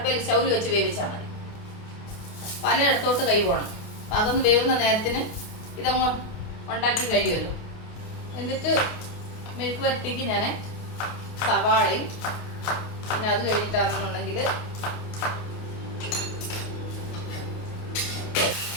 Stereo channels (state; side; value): late; right; 28 ms